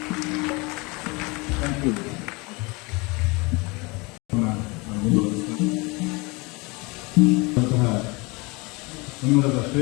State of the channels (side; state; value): right; quieter; 26.8 dB